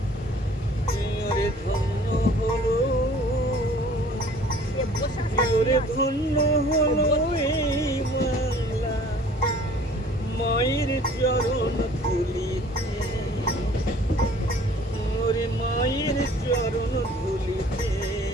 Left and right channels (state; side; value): normal; both; correlation 0.51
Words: ওরে ধন্য হলো, ওরে ধন্য হলো এই বাংলা মায়ের চরণ ধুলিতে। ওরে মায়ের চরণ ধুলিতে।